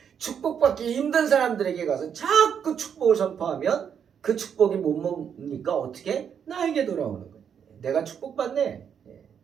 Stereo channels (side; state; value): left; quieter; 7.8 dB